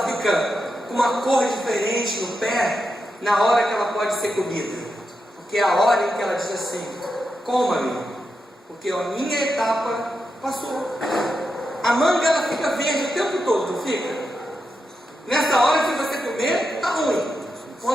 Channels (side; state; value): both; normal; correlation 0.87